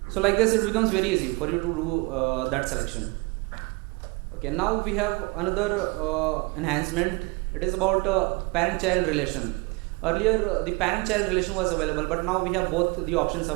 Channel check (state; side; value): quieter; left; 27.6 dB